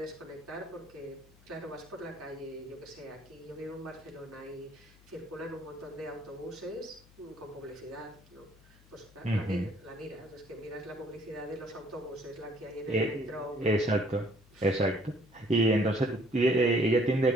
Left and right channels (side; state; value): left; noise; hum, 26 dB below the sound